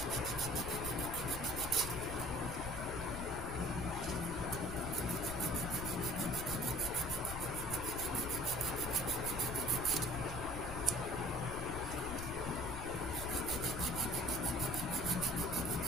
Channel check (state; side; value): noise; left; rumble, 6 dB below the sound